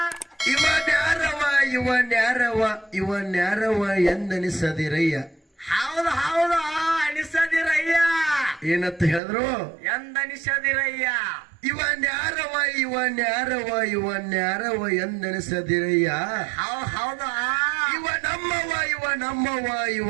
ಇವನ್ಯಾರವ ಇವನ್ಯಾರವ ಇವನ್ಯಾರವ ಎಂದನಿಸದಿರಯ್ಯ. ಹೌದು ಹೌದು ಅನಿಸದಿರಯ್ಯ. ಏನಂತ ಹೇಳಿದ್ರು? ಎಂದನಿಸದಿರಯ್ಯ. ಇವನ್ಯಾರವ ಇವನ್ಯಾರವ ಇವನ್ಯಾರವ ಎಂದನಿಸದಿರಯ್ಯ. ಹೌದು ಇವ ನಮ್ಮವ ಇವ ನಮ್ಮವ ಇವ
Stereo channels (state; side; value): drops out; left; at 9.2 s